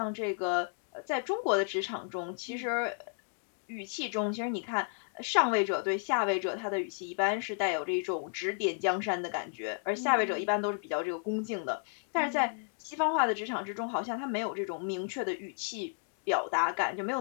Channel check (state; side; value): silent; right; 56 dB below the other